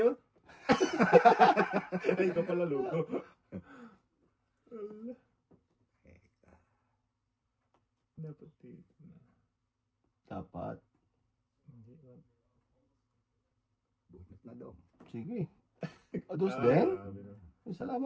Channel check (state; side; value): identical; both; correlation 1.00